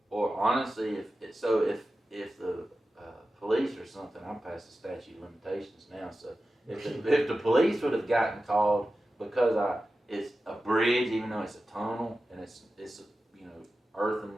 honestly, if the police or something, I'm past the statute of limitations now. So if the police would have gotten called because it's a bridge, even though it's a tunnel and it's earthen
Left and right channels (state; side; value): normal; both; correlation 0.93